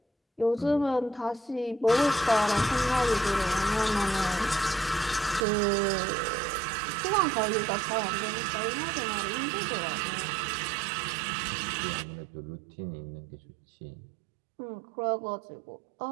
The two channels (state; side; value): drops out; left; at 5.5 s